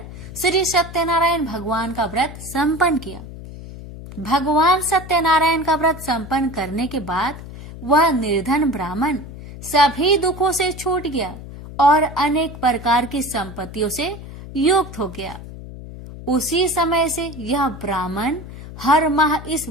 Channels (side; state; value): left; noise; hum, 13 dB below the sound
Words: श्री सत्यनारायण भगवान का व्रत संपन्न किया। भगवान सत्यनारायण का व्रत संपन्न करने के बाद वह निर्धन ब्राह्मण सभी दुखों से छूट गया और अनेक प्रकार की संपत्तियों से युक्त हो गया। उसी समय से यह ब्राह्मण हर माह इस